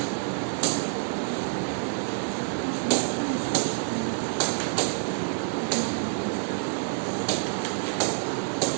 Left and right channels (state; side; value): silent; left; 60 dB below the other